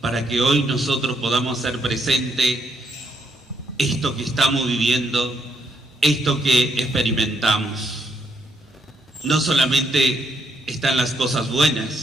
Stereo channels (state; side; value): normal; both; correlation 0.75